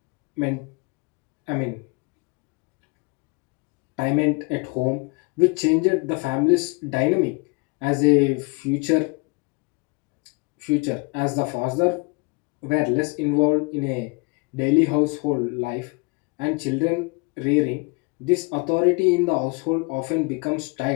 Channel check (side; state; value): right; quieter; 29.7 dB